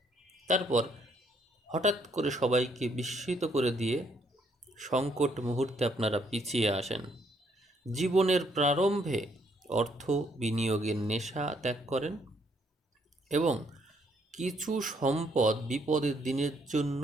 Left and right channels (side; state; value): both; normal; correlation 0.69